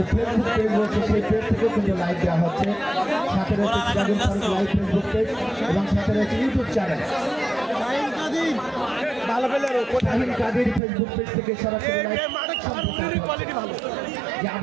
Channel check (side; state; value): left; drops out; at 10.8 s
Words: ফেসবুক পেজ রয়েছে সেই পেজ থেকেও কিন্তু লাইভ দেওয়া হচ্ছে। সাথে রয়েছে Sirajul Faruk live Facebook page এবং সাথে রয়েছে YouTube channel Shahin Kader Facebook page থেকে সরাসরি যে